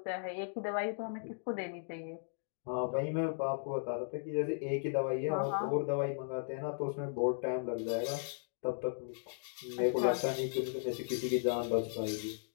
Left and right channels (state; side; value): silent; right; digital silence